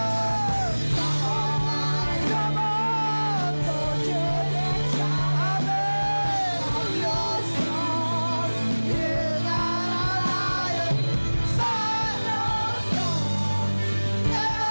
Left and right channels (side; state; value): both; inverted; correlation -1.00